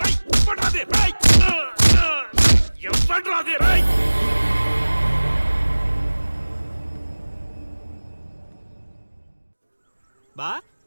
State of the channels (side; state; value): both; inverted; correlation -1.00